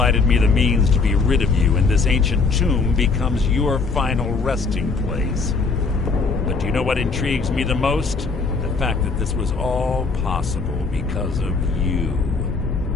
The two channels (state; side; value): quieter; right; 4.4 dB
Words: me the means to be rid of you, and this ancient tomb becomes your final resting place. But do you know what intrigues me the most? The fact that this was all possible because of you.